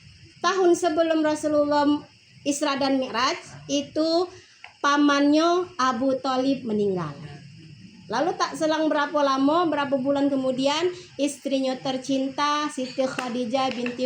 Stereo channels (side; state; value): both; identical; correlation 1.00